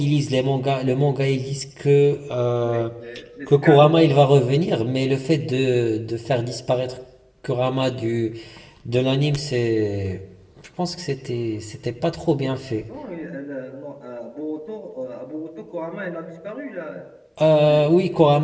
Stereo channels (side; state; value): both; identical; correlation 1.00